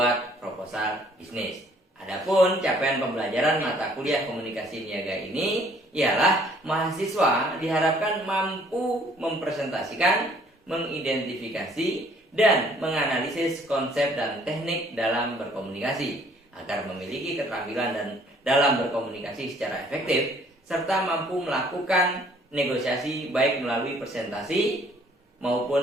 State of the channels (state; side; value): normal; both; correlation 0.60